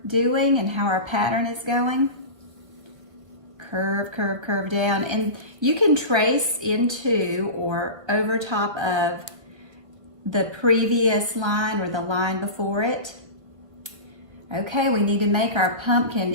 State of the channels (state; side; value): late; left; 1.3 ms